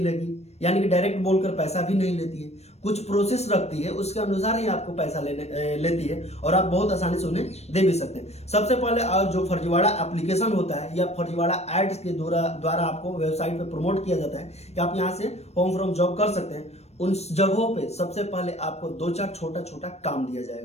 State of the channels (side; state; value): right; late; 0.31 ms